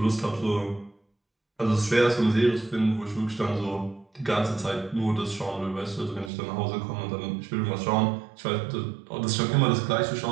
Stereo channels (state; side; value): drops out; left; at 6.3 s